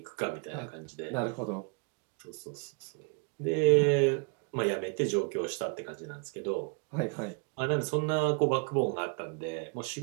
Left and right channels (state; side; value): quieter; left; 35.2 dB